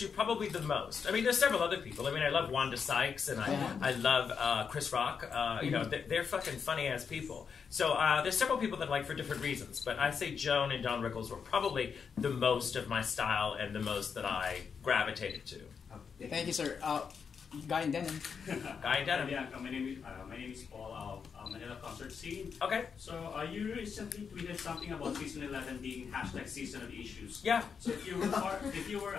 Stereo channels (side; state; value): right; quieter; 6.3 dB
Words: probably the most. I mean, there's several other people. I mean, I love Wanda Sykes, and I love Chris Rock. You know, they're fucking funny-ass people. So there's several people that I like for different reasons, but I say Joan and Don Rickles were probably the most of my style and the most that I gravitated to. Thank you, sir. Guy in denim. Guy in denim. Bianca, my name is Paul of Manila concert scene. Okay. So you recently tweeted something about season 11 being # season of issues. Yeah. So if you were part